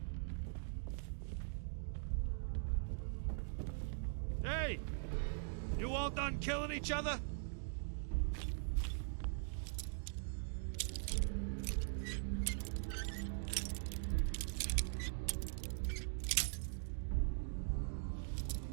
Hey! You all done killing each other?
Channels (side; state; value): left; silent; digital silence